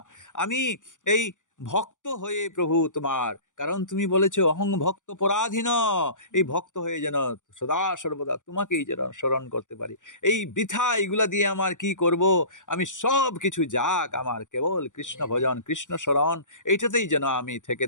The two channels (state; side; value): late; right; 0.87 ms